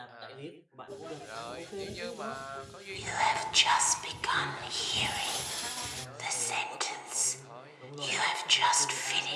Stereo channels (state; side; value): identical; both; correlation 1.00